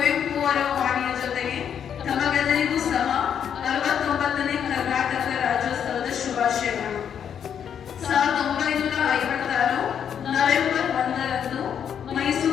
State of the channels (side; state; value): right; quieter; 8.4 dB